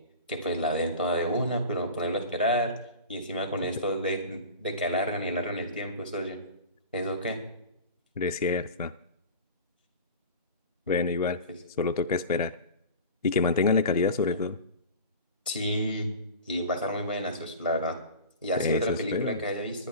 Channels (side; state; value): both; inverted; correlation -0.34